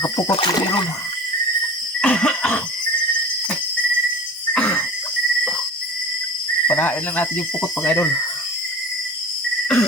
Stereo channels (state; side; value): normal; both; correlation 0.36